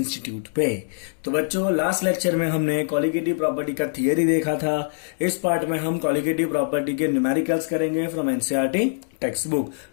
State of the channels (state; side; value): silent; right; digital silence